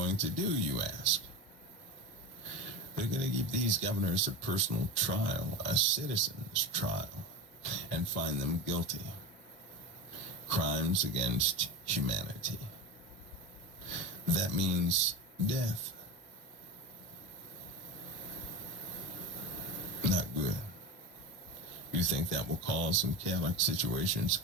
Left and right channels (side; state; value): both; normal; correlation 0.25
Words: to do, you ask? They're going to give these governors a personal trial, a citizen's trial, and find them guilty. Crimes against humanity. That means death. Not good. You think that will cause some chaotic situations